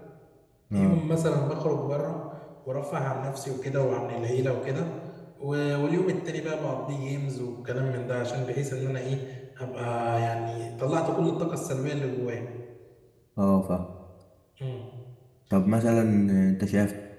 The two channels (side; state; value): both; identical; correlation 1.00